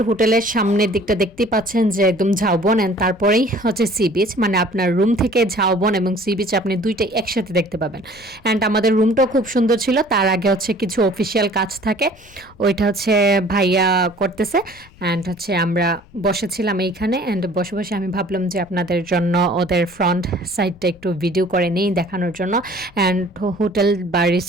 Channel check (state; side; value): noise; left; rumble, 25 dB below the sound